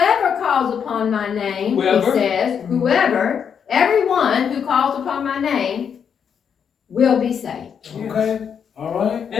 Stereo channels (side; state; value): right; quieter; 7.4 dB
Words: calls upon my name, Whoever. he says, whoever, everyone who calls upon my name will be saved. Okay. All right.